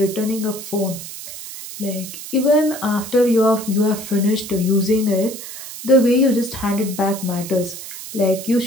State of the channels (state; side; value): noise; right; hiss, 11 dB below the sound